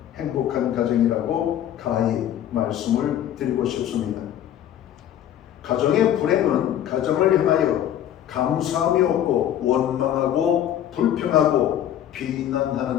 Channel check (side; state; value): right; quieter; 10.9 dB